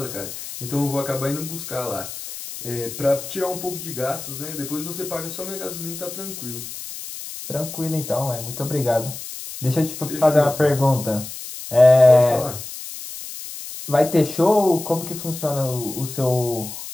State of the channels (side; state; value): left; noise; hiss, 10 dB below the sound